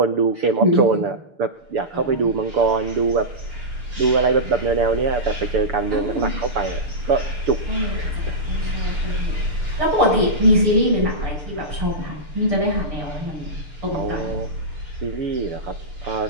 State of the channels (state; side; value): late; left; 6.8 ms